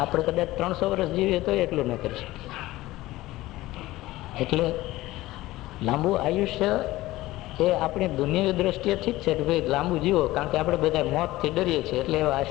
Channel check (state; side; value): quieter; right; 17.5 dB